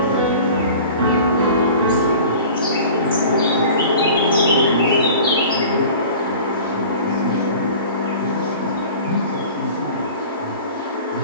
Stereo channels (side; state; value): both; inverted; correlation -0.42